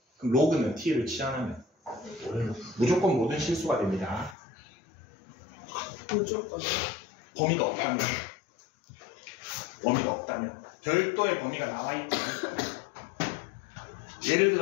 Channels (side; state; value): right; drops out; at 4.4 s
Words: 그럼 로그는 t를 치환하면 무조건 모든 실수가 됩니다. 무조건. 범위가 없다면. 범위가 없다면. 별도의 범위가 나와 있지 않을까. 예를